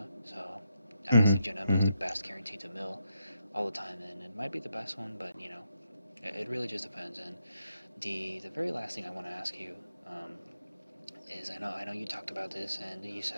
so I Hmm. think Janemba is the Hmm. best guaranteed to mill all the time, and it might be the best one, but it really just depends. And the very last thing I want to ask you is I know you talked about this and you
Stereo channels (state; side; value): inverted; both; correlation -0.82